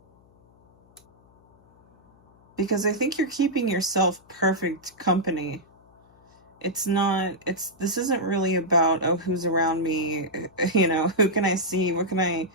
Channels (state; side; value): noise; left; hum, 30 dB below the sound